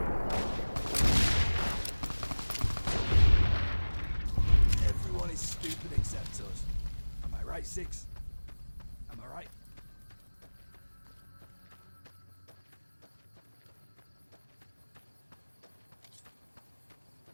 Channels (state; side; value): inverted; both; correlation -1.00